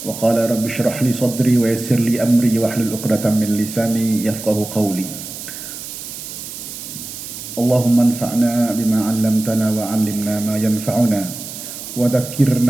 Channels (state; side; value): noise; right; hiss, 10 dB below the sound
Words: Wa qala rabbi shrah li sadri wa yassir li amri wa hlul 'uqdatam min lisani yafqahu qawli. Allahumma anfa'na bima 'allamtana wa 'allimna ma yanfa'una wa